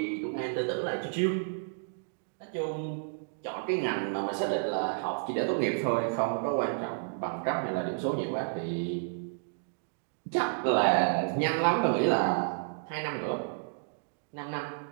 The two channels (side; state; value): left; silent; digital silence